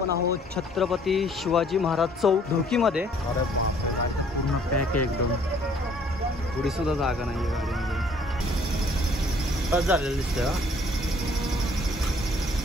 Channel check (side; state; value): both; normal; correlation 0.60